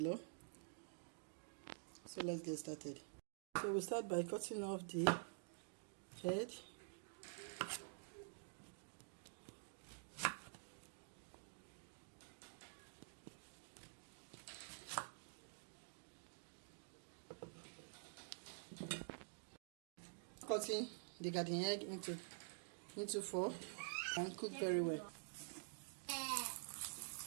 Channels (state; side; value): silent; left; digital silence